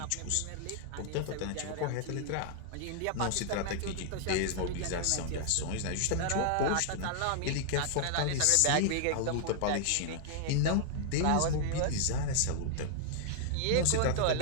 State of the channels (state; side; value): different; both; correlation -0.01